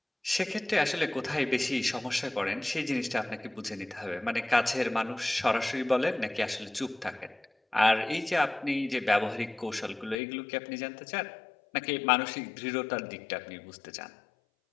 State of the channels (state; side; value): drops out; right; at 10.2 s